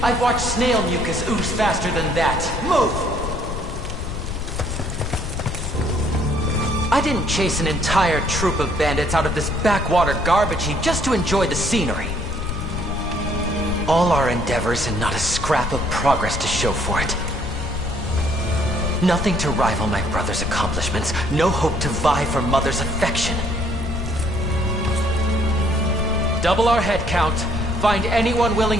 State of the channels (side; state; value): left; noise; rumble, 4 dB below the sound